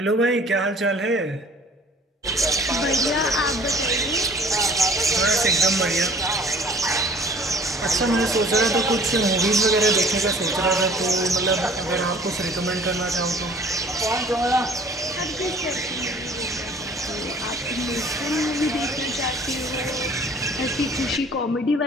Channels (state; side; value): normal; both; correlation 0.51